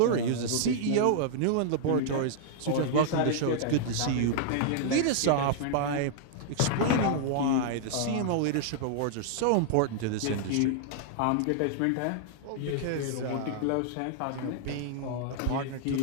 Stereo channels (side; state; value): both; different; correlation -0.01